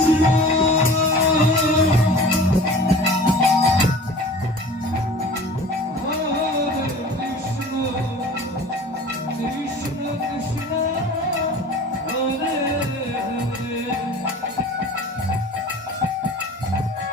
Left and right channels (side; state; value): both; normal; correlation 0.41